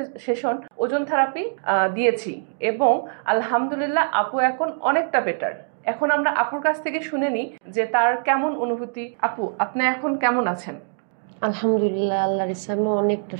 সেশন ওজন থেরাপি দিয়েছি এবং আলহামদুলিল্লাহ আপু এখন অনেকটা বেটার। এখন আমরা আপুর কাছ থেকে শুনে নিই যে তার কেমন অনুভূতি। আপু, আপনি এখন কেমন আছেন? আলহামদুলিল্লাহ, আল্লাহর ইচ্ছা আমি অনেকটা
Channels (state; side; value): silent; left; digital silence